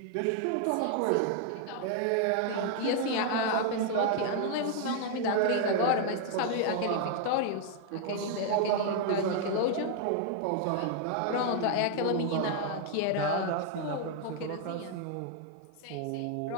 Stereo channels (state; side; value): different; both; correlation 0.00